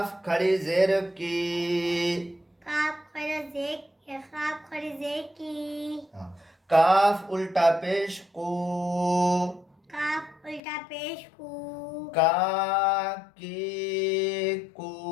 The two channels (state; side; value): drops out; right; at 10.6 s